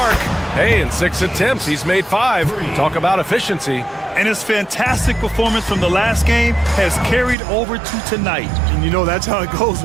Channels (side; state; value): left; drops out; at 7.4 s